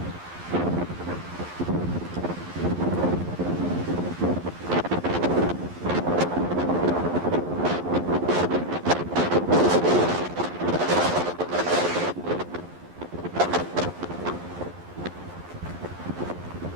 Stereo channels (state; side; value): late; left; 11 ms